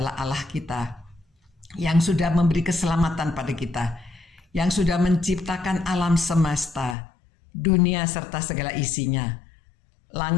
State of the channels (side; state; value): right; drops out; at 7.0 s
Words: Allah kita yang sudah memberi keselamatan pada kita, yang sudah menciptakan alam semesta, dunia serta segala isinya.